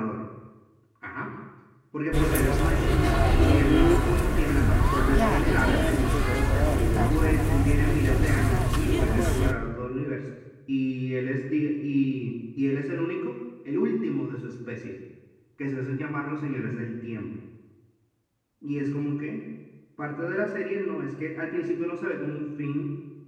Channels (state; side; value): identical; both; correlation 1.00